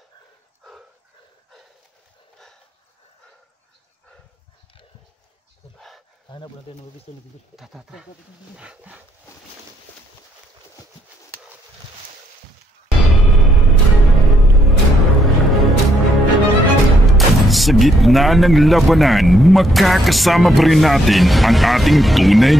Hanap natin ng mabisto na dito. Tata. Sa gitna ng labanan, makakasama pa rin natin ang ating tunay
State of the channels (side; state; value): both; normal; correlation 0.72